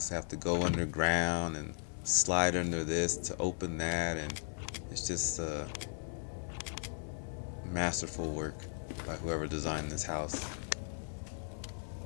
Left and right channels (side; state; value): right; silent; 53 dB below the other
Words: have to go underground and slide under this to open that, and it's just masterful work by whoever designed this house.